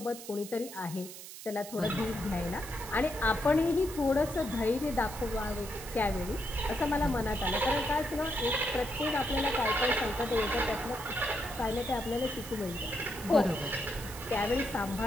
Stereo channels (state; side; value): noise; right; hiss, 13 dB below the sound